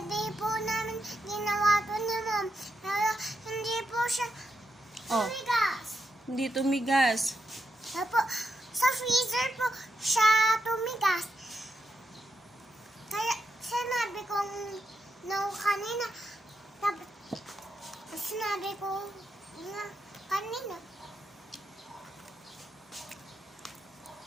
po namin ginawa to ni Mom. Pero hindi po siya Oh. tumigas. Hindi tumigas. Tapos, sa freezer po siya tumigas. Kaya sinabi kong no kanina. Tapos sinabi ko na kanina.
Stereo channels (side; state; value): both; normal; correlation 0.84